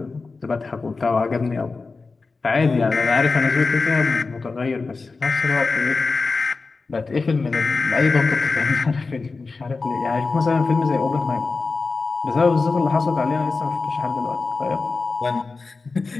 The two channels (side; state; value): right; quieter; 4.1 dB